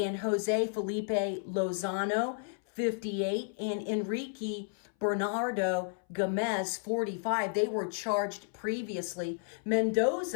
Jose Felipe Lozano, 58, and Enrique Bernardo Gomez, 45. They were charged previously.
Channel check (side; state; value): right; silent; 56 dB below the other